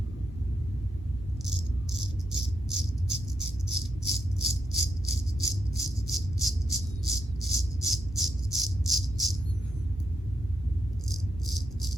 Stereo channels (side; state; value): both; normal; correlation 0.82